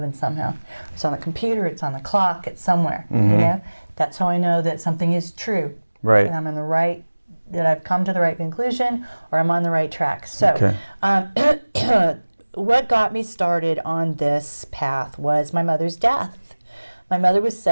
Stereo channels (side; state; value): both; inverted; correlation -1.00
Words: somehow. It's on the computer, it's on the clock, it's somewhere, you know? That's how I know that something is true. Right. And I'm in the right, that I've come to the right conclusion, or I'm on the right track. So, what got me started on this path was my mother's death. My mother was